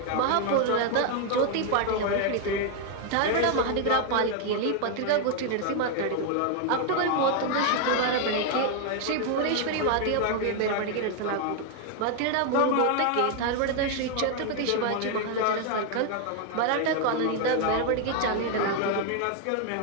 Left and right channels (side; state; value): both; different; correlation 0.00